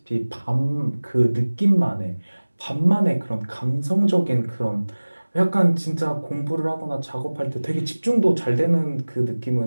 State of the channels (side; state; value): both; inverted; correlation -1.00